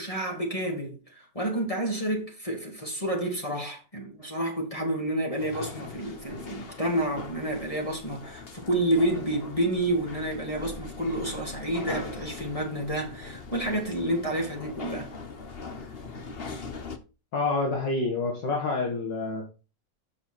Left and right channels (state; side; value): late; right; 1.7 ms